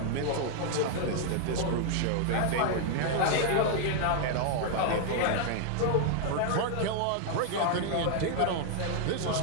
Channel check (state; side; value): different; both; correlation 0.00